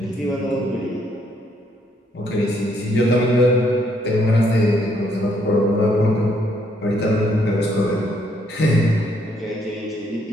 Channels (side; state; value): both; normal; correlation 0.70